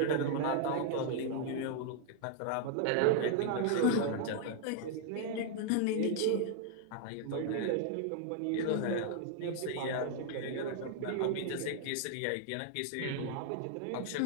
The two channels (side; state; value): both; different; correlation 0.00